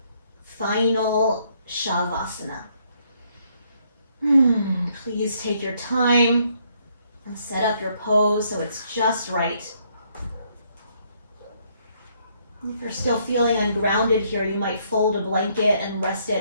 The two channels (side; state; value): both; inverted; correlation -0.70